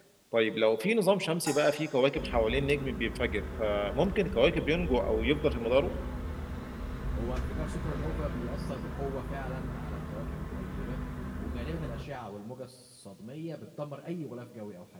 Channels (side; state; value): both; identical; correlation 1.00